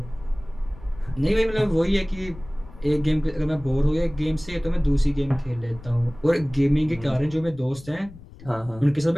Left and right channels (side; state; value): left; noise; rumble, 19 dB below the sound